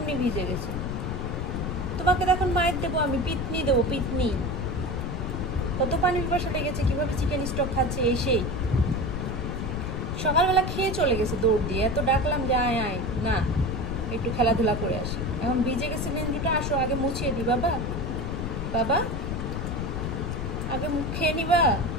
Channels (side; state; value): left; noise; rumble, 3 dB below the sound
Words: ভিজে গেছে। তোমাকে তখন মায়ের দেবো আমি, পিতনি দেবো, পিতনি। কত পানি পিপাসা লেগেছে, কিভাবে চিকেন স্টক খাচ্ছে এসেই। সকালবেলা খেয়ে চলে গেছে দৌড় দিয়ে, এত ডাকলাম যে আয় আয়, না একটু খেলাধুলা করে আসি। এখন ভিজে গেছে নেঞ্জুটা, আসো আগে মুছিয়ে দি বাবা। বাবা আগে মুখ খেয়ে নিবা,